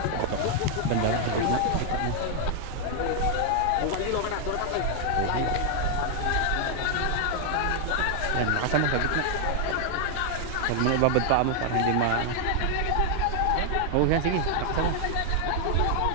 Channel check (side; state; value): both; different; correlation 0.00